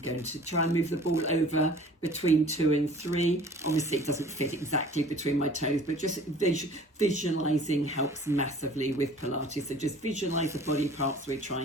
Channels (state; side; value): normal; both; correlation 0.48